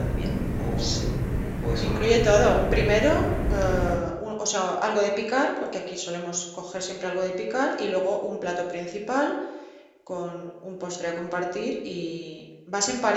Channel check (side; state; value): both; identical; correlation 1.00